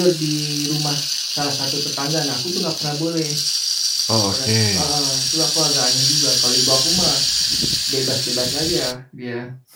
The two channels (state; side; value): identical; both; correlation 1.00